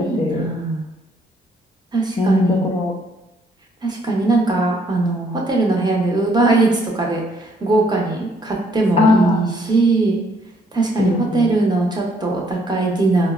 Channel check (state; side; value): normal; both; correlation 0.67